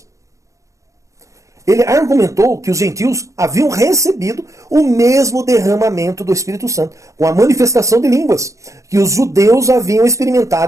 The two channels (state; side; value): late; left; 0.15 ms